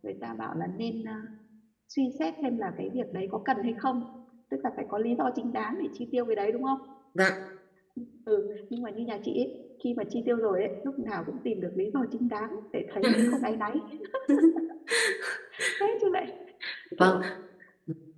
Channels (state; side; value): identical; both; correlation 1.00